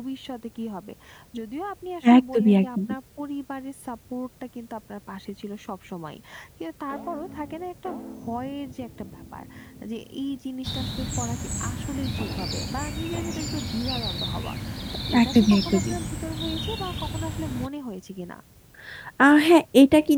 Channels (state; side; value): identical; both; correlation 1.00